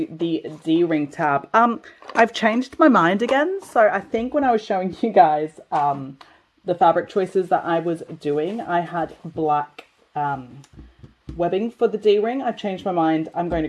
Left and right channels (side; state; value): both; identical; correlation 1.00